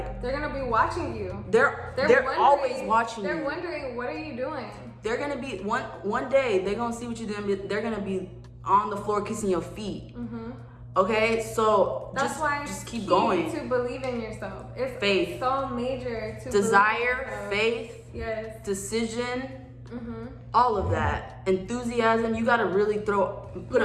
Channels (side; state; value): both; identical; correlation 1.00